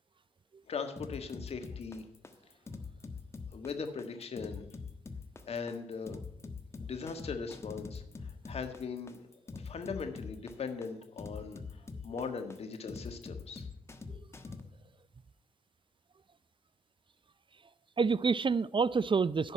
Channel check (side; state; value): both; normal; correlation 0.67